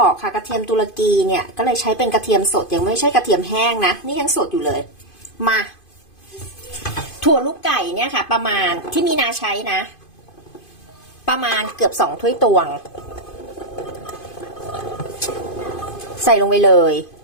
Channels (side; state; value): right; late; 2.5 ms